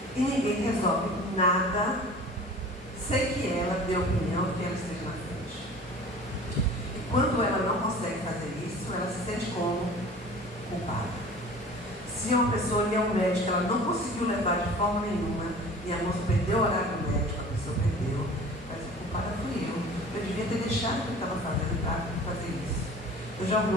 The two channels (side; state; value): both; normal; correlation 0.43